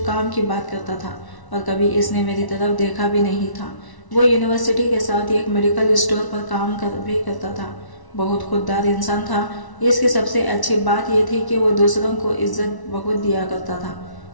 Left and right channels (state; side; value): late; right; 1.1 ms